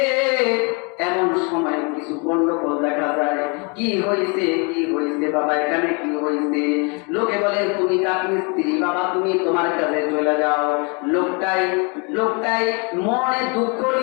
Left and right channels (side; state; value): right; quieter; 33.1 dB